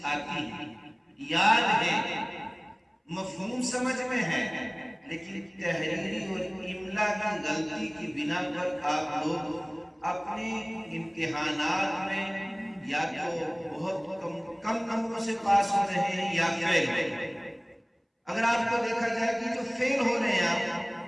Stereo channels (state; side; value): identical; both; correlation 1.00